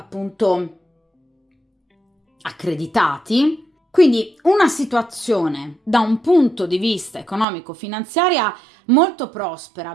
accreditati. Quindi una situazione da un punto di vista economico-finanziaria molto prospera,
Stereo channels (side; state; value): left; drops out; at 7.5 s